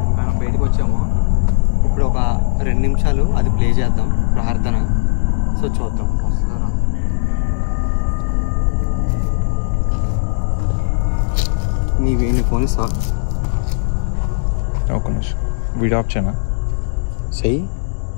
బయటకు వచ్చాము. ఇప్పుడు ఒక 2 నిమిషాలు అది ప్లే చేద్దాం ప్రార్థన. సో చూద్దాం. నీ ఫోన్ ఇస్తా. ఒక నిమిషం వీడియో ఆఫ్ చేయనా? చెయ్యి.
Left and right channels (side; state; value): right; silent; digital silence